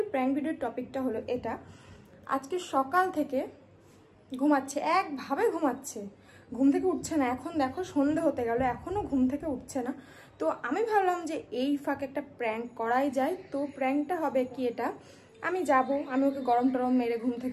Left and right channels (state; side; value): identical; both; correlation 1.00